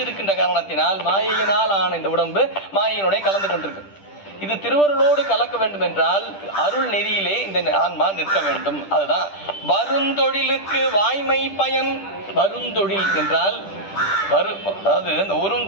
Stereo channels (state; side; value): late; right; 10 ms